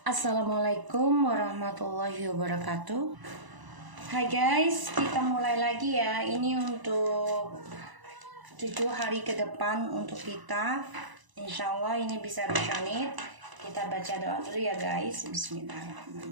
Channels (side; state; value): left; late; 1.0 ms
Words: Assalamualaikum warahmatullahi wabarakatuh. Hai guys, kita mulai lagi ya. Ini untuk 7 hari ke depan untuk kita. Insya Allah ini bisa resonate. Kita baca doa dulu ya guys.